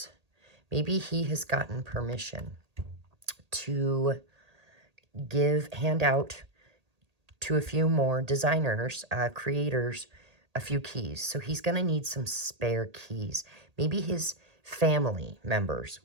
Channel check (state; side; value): late; left; 1.8 ms